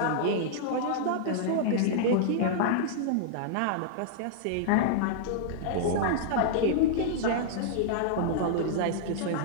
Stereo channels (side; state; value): both; different; correlation -0.01